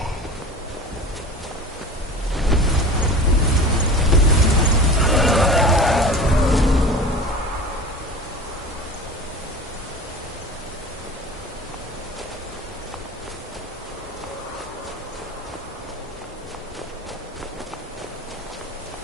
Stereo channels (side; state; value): both; normal; correlation 0.35